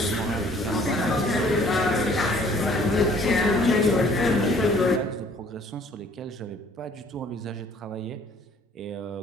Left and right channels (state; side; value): normal; both; correlation 0.57